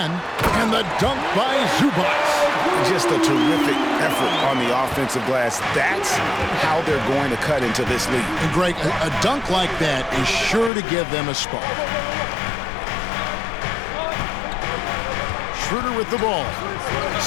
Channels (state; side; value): drops out; right; at 10.7 s